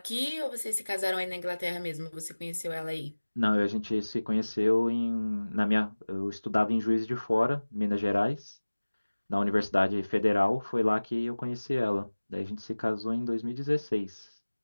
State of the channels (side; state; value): both; inverted; correlation -1.00